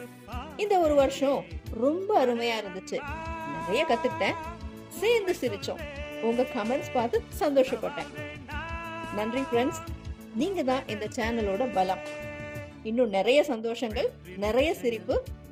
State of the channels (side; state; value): both; identical; correlation 1.00